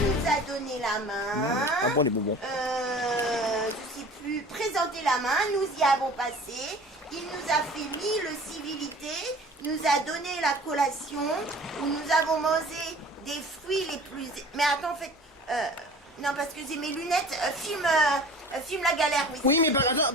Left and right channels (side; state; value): both; normal; correlation 0.44